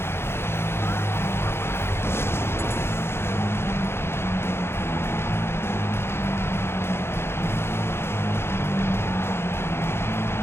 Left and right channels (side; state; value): right; late; 0.12 ms